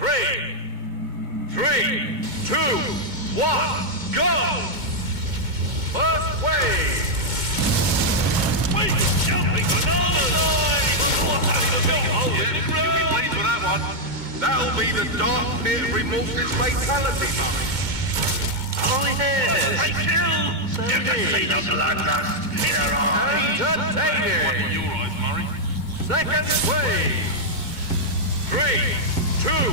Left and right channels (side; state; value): left; late; 2.2 ms